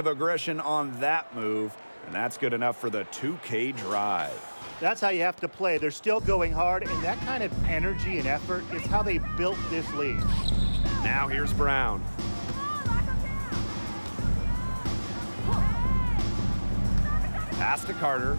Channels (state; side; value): inverted; both; correlation -1.00